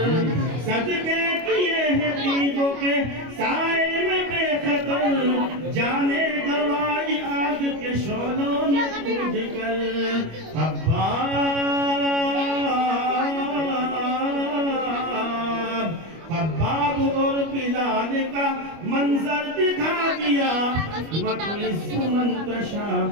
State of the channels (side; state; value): left; late; 25 ms